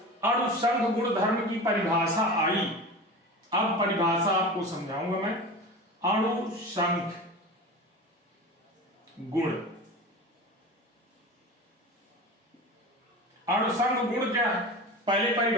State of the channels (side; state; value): both; normal; correlation 0.32